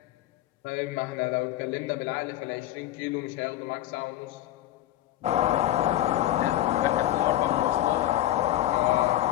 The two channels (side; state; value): right; quieter; 13.7 dB